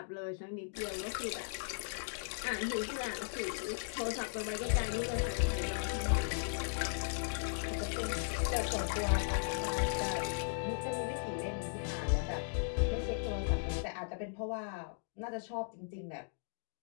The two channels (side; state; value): right; silent; digital silence